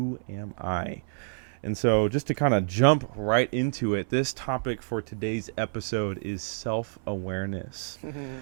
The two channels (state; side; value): silent; left; 59 dB below the other